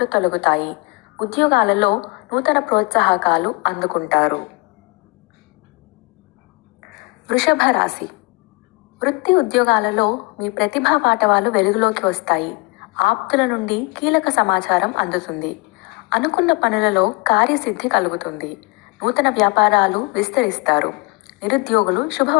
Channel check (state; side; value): quieter; right; 27.1 dB